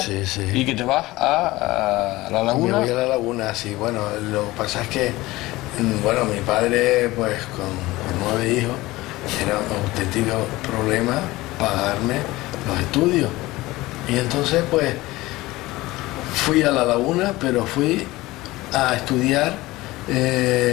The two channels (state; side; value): quieter; right; 19.2 dB